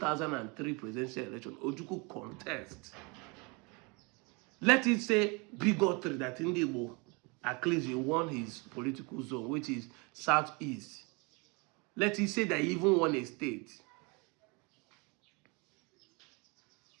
presidential election, Ojukwu contest. Let it say bigotry that Igbo, at least he won his political zone, which is southeast. Let it say that he even won a state.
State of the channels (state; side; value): quieter; left; 29.7 dB